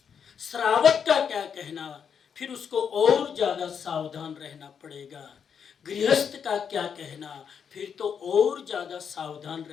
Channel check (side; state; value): right; quieter; 7.2 dB